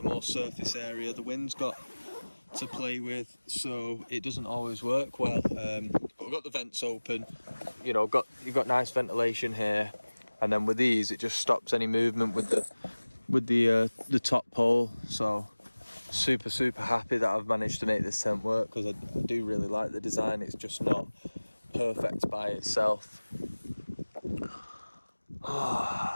more surface area the wind's got to play with, so it doesn't always work well. But we've got the vents open, you know, you've got nice ventilation here, and then with these it just stops any movement with the top pole. So super happy that I've managed to make this tent work, because I do really like the design. It's just not perfect by itself.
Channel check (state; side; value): inverted; both; correlation -1.00